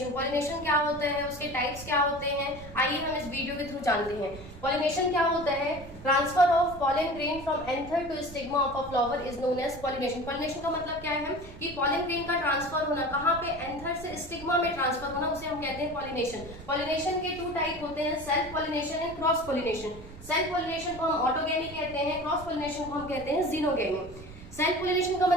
Pollination क्या होता है, उसके टाइप्स क्या होते हैं, आइए हम इस वीडियो के थ्रू जानते हैं। पॉलिनेशन क्या होता है? Transfer of pollen grain from anther to stigma of a flower is known as pollination. Pollination का मतलब क्या है कि पॉलन ग्रेन का ट्रांसफर होना, कहाँ पे? एंथर से स्टिग्मा में ट्रांसफर होना, उसे हम कहते हैं पॉलिनेशन। पॉलिनेशन के टू टाइप होते हैं, self pollination and cross pollination. Self pollination को हम ऑटोगेमी कहते हैं, क्रॉस पॉलिनेशन को हम कहते हैं जीनोगेमी। सेल्फ पॉलिनेशन का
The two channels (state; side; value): noise; right; rumble, 16 dB below the sound